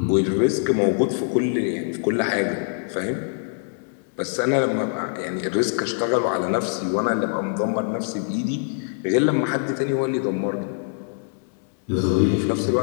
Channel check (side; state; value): right; silent; 63 dB below the other